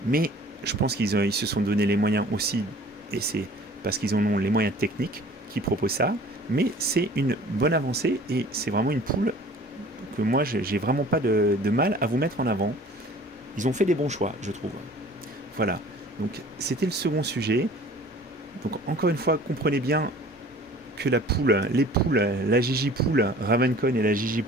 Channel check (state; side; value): normal; both; correlation 0.48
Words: Mais Je pense ils se sont donné les moyens aussi, et c'est parce qu'ils en ont les moyens techniques qui proposent ça, mais c'est une bonne avancée et c'est vraiment une poule que moi j'ai vraiment pas de mal à vous mettre en avant. Ils ont fait des bons choix, je trouve. Voilà, donc c'était le second sujet. Donc encore une fois, comprenez bien que les poules, la Gigi poule Ravencon et la Gigi